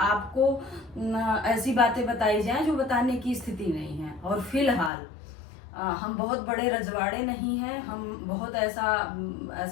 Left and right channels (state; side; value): drops out; right; at 4.9 s